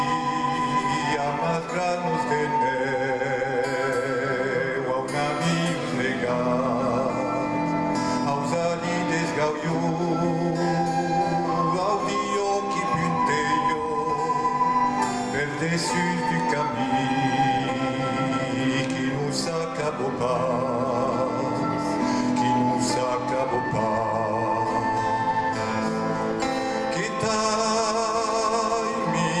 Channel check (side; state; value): both; identical; correlation 1.00